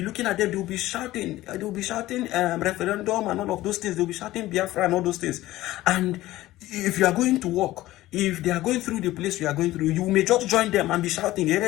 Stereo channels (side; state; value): right; quieter; 16.4 dB